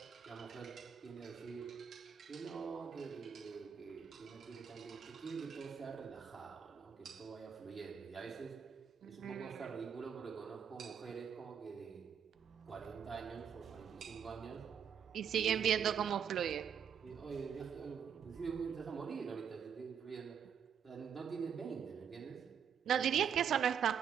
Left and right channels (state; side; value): quieter; left; 7.7 dB